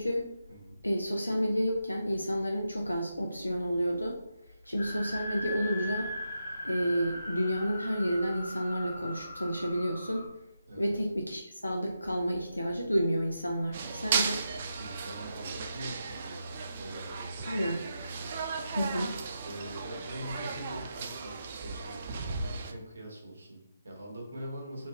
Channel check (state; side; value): inverted; both; correlation -0.86